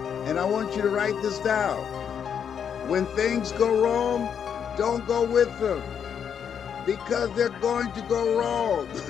And I want you to write this down. When things go wrong, don't go with them, because they're going to go wrong.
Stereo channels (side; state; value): right; quieter; 7.8 dB